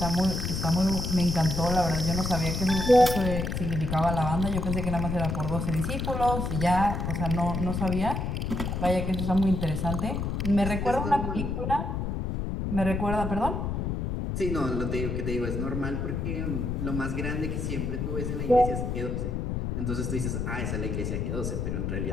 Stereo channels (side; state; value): left; noise; rumble, 2 dB below the sound